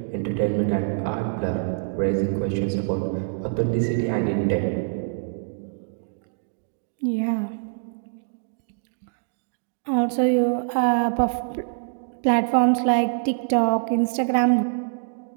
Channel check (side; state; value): left; silent; digital silence